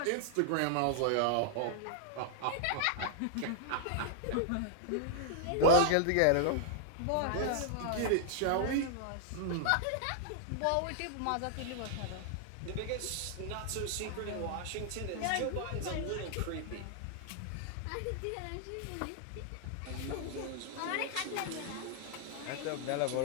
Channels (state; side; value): different; both; correlation -0.01